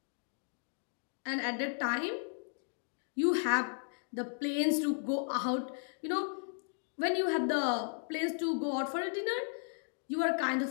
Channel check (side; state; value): right; silent; digital silence